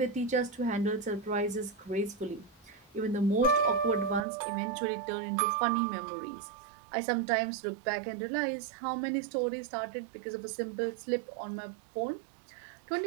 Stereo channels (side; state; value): left; drops out; at 4.2 s